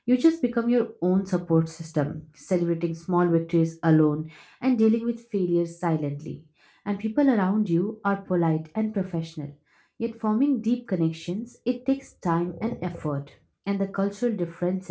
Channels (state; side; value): identical; both; correlation 1.00